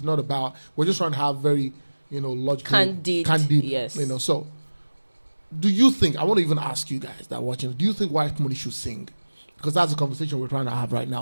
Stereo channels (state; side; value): inverted; both; correlation -1.00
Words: not about, we're just trying to have very, logical, candid, yes. So do you think, I want to even ask you guys that are watching, do you think Whitemoney should sing? Because that's a conversation we're trying to have right